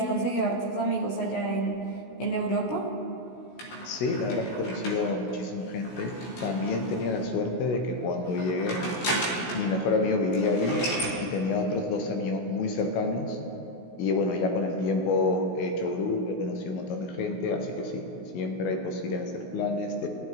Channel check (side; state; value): right; late; 16 ms